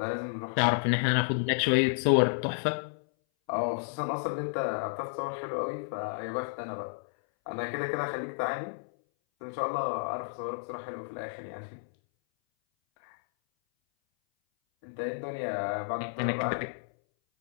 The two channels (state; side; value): silent; right; 57 dB below the other